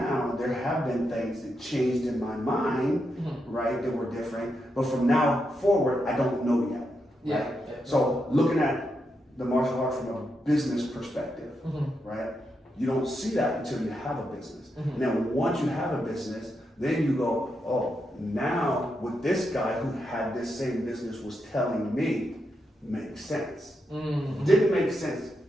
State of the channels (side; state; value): both; normal; correlation 0.84